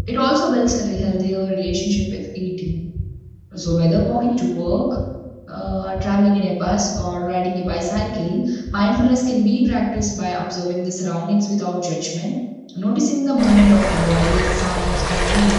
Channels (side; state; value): both; identical; correlation 1.00